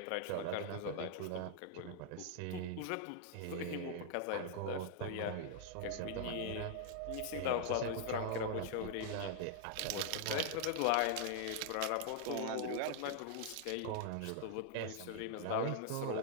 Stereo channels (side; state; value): both; different; correlation 0.00